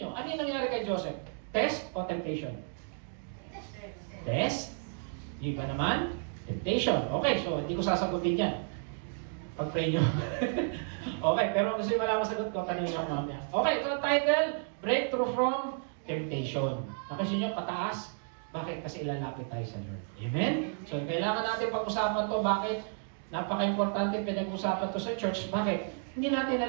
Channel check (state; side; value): silent; left; 56 dB below the other